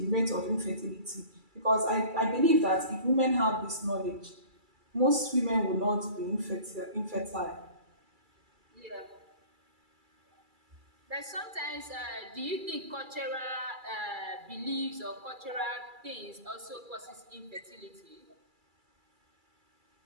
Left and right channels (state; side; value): late; left; 2.3 ms